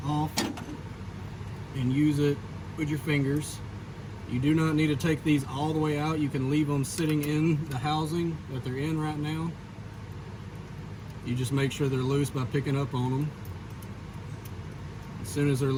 off and use it with your fingers. You do not need to take these all the way out. You can leave them sitting in the housing that they're in right now. You just make sure they're loose by picking up on them. As soon as they're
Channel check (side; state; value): both; identical; correlation 1.00